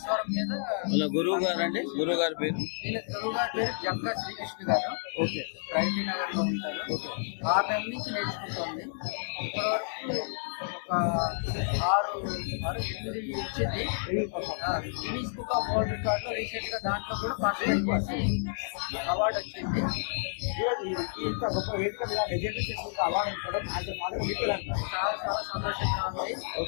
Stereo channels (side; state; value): right; silent; 58 dB below the other